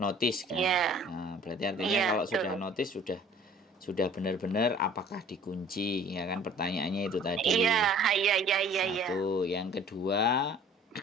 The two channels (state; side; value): normal; both; correlation 0.51